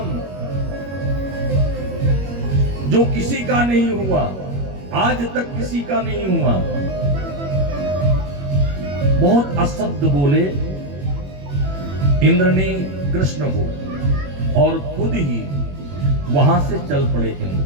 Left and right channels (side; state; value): left; late; 21 ms